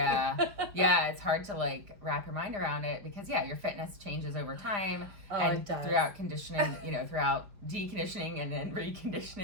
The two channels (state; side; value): late; left; 4.9 ms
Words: Yeah, it's hard to like wrap your mind around it because your fitness changes over time and throughout conditioning, throughout deconditioning and then